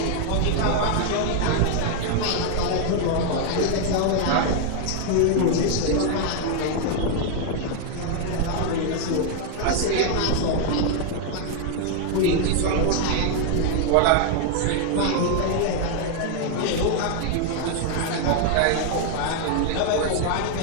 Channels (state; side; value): different; both; correlation 0.00